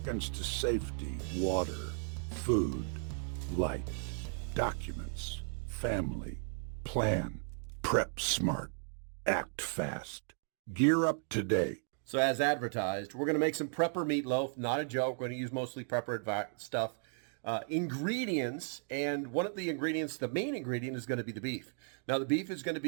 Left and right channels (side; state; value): left; silent; 54 dB below the other